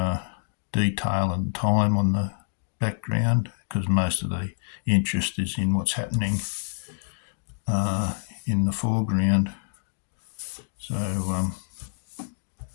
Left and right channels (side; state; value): right; silent; digital silence